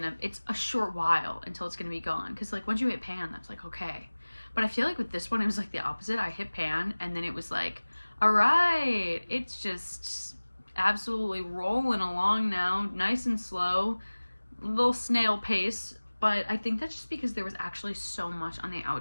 a short while until it's gonna be gone, because like once you hit pan that's like okay. But I feel like with this one it was like the opposite. I hit pan and then it was like, all right, it's just absolutely rolling along now, nice and slow. little snail pace, but I think that's just because there was actually so much on the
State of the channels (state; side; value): inverted; both; correlation -1.00